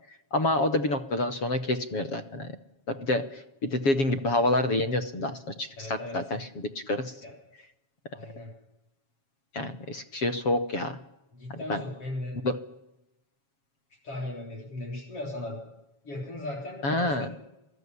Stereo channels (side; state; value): right; late; 7.3 ms